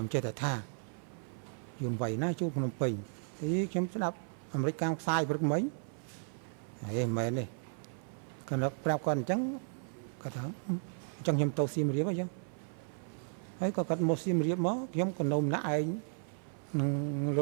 ុំចេះតែថាយួនវាយណាចូលភ្នំពេញទីខ្ញុំស្ដាប់អាមេរិកកាំងផ្សាយព្រឹកមិញហេមែនទេគាត់ប្រាប់គាត់អញ្ចឹងគាត់ថា ចឹងខ្ញុំទៅសៀមរាបអញ្ចឹងហើយក៏គាត់មកសៀមរាបមកខ្ញុំក៏នៅម្នាក់ឯងនឹង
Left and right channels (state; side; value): silent; left; 55 dB below the other